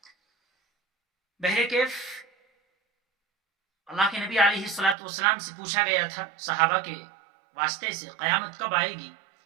بہرکیف اللہ کے نبی علیہ الصلوۃ والسلام سے پوچھا گیا تھا صحابہ کے واسطے سے قیامت کب آئے گی۔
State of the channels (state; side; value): drops out; left; at 5.0 s